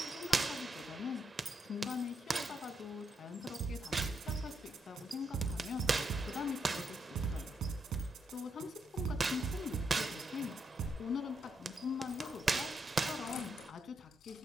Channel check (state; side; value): normal; both; correlation 0.81